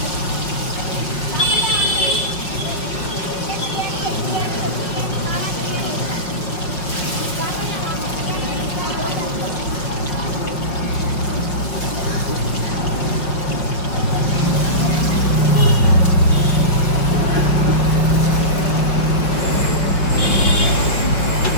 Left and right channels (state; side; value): late; right; 5.7 ms